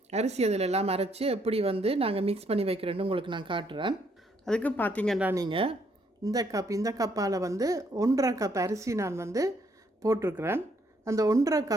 அரிசி அதில் எல்லாம் அரைச்சி எப்படி வந்து நாங்கள் மிக்ஸ் பண்ணி வைக்கிறேன்னு உங்களுக்கு நான் காட்டுறேன். அதுக்கு பார்த்தீங்கன்னா நீங்கள் இந்த கப்பால் வந்து 1.5 கப் அரிசி நான் வந்து போட்டிருக்கிறேன். அந்த 1.5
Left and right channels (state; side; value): normal; both; correlation 0.70